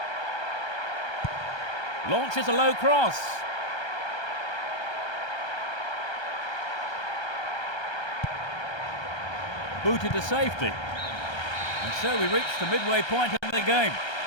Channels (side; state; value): right; late; 1.3 ms